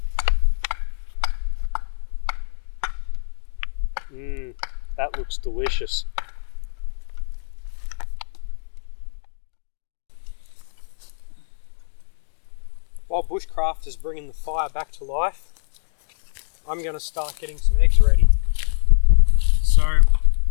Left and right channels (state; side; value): silent; right; 63 dB below the other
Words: That looks delicious. While Bushcraft is bringing the fire back to life, I'm going to start getting some eggs ready. So,